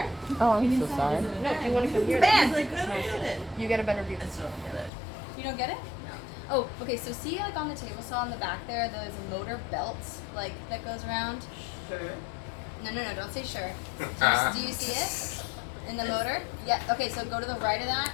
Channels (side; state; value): right; drops out; at 4.9 s